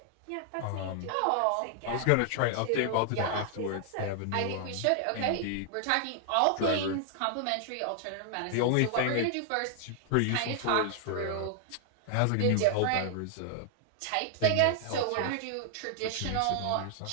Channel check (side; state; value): both; different; correlation 0.00